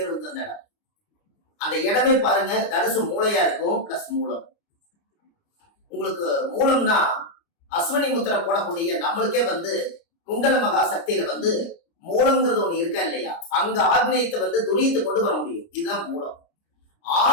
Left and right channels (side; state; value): right; late; 29 ms